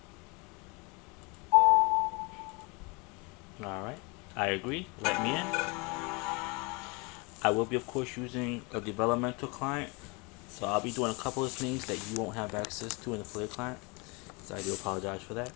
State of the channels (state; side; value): quieter; right; 29.3 dB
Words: Alright, I agree, let me in. I will be of course using a developmental client, so I'll be doing a couple of things that you won't have access to in the player client, so I do apologize for that.